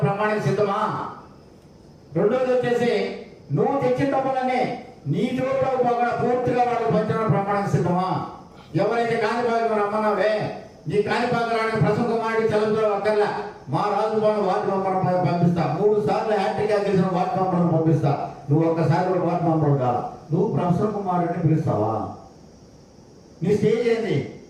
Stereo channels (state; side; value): identical; both; correlation 1.00